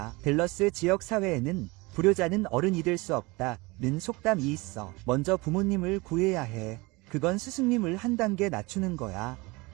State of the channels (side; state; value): left; quieter; 24.1 dB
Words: 댈러스 지역 사회에는 불효자는 어른이 될 수 없다는 속담이 있어. 먼저 부모님을 구해야 해. 그건 스승님을 한 단계 낮추는 거야.